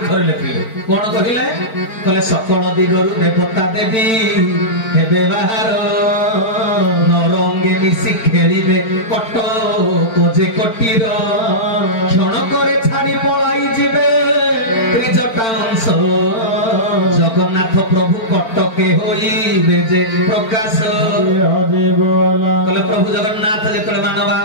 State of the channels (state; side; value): late; right; 4.4 ms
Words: थरे लिखिले कोन कहिले कले सकल दिगरु देवता देवी हेबे बाहर नरंगे मिसी खेलिबे कटक जे कटीर क्षण करे छाड़ी पलाई जिबे त्रिजटा अंश जगन्नाथ प्रभु कटके होइबे जे प्रकाश कले प्रभु जगन्नाथ जेतले मानव